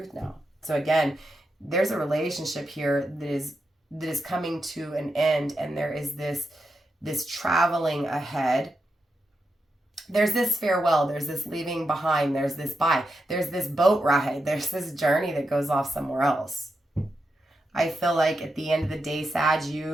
now. So again, there's a relationship here that is coming to an end. And there is this traveling ahead. There's this farewell, there's this leaving behind, there's this bye, there's this boat ride, there's this journey that goes off somewhere else. I feel like at the end of the day, Sag,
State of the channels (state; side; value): normal; both; correlation 0.86